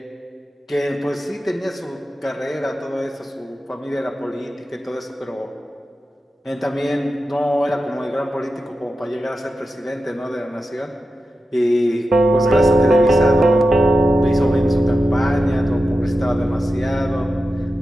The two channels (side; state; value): both; normal; correlation 0.91